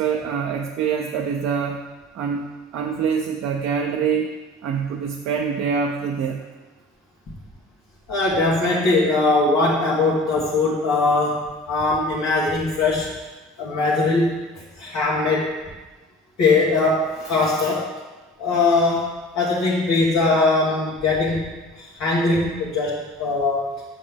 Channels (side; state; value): both; normal; correlation 0.41